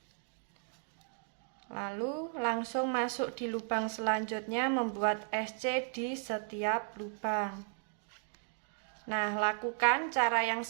Lalu langsung masuk di lubang selanjutnya, membuat SC di setiap lubang. Nah, lakukan cara yang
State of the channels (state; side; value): silent; left; 54 dB below the other